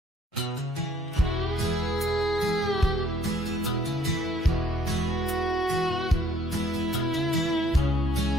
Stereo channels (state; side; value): normal; both; correlation 0.62